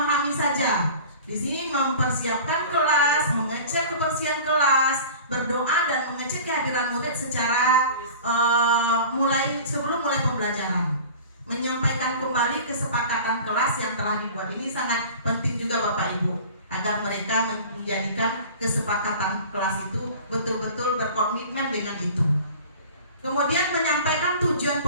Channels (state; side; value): inverted; both; correlation -0.41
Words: saja. Di sini mempersiapkan kelas, mengecek kebersihan kelas, berdoa dan mengecek kehadiran murid secara sebelum mulai pembelajaran. Menyampaikan kembali kesepakatan kelas yang telah dibuat. Ini sangat penting juga Bapak Ibu, agar mereka menjadikan kesepakatan kelas itu betul-betul berkomitmen dengan itu. Kemudian menyampaikan tujuan